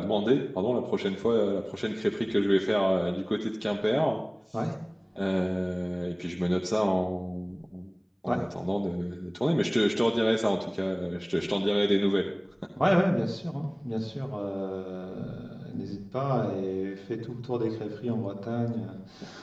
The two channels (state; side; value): identical; both; correlation 1.00